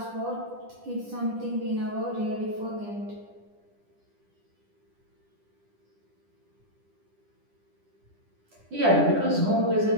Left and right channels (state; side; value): late; left; 10 ms